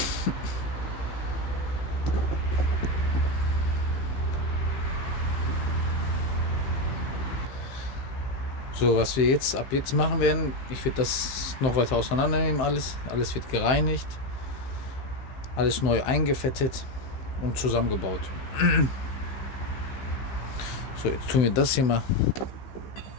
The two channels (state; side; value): late; right; 15 ms